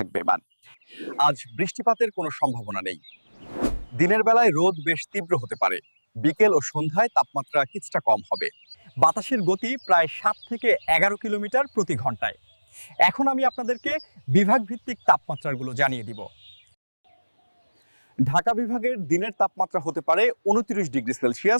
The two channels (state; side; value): inverted; both; correlation -1.00